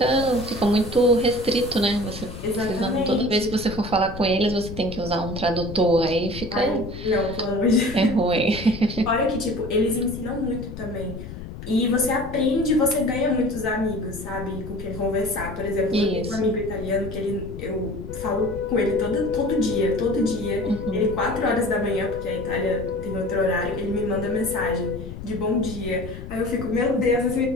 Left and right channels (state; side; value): noise; left; rumble, 11 dB below the sound